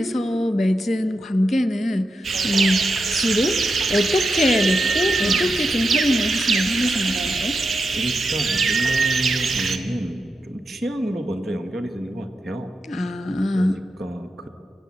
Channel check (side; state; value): both; normal; correlation 0.87